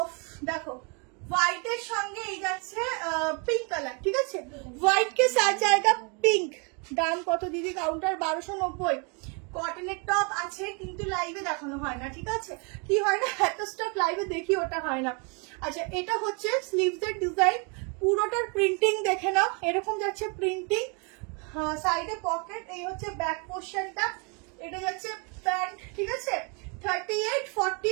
অফ দেখো হোয়াইটের সঙ্গে এই যাচ্ছে পিঙ্ক কালার, ঠিক আছে? হোয়াইট কে সাথ জায়গা পিঙ্ক। দাম কত দিদি? কাউন্টার 1290। কটনের টপ আছে কিন্তু লাইভে দেখানো হয় না, ঠিক আছে? কি হয় না, এত স্টক লাইভে দেখি ওটা হয় না। আচ্ছা, এটা হচ্ছে স্লিভস এর ডিজাইন, পুরোটার প্রিন্টিং দেখে নাও, এরকম যাচ্ছে প্রিন্টিং, সাইডে পকেট, এই হচ্ছে ব্যাক পোর্শনটা, এটা যাচ্ছে প্যান্ট, ঠিক আছে? 38,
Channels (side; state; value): left; quieter; 34.0 dB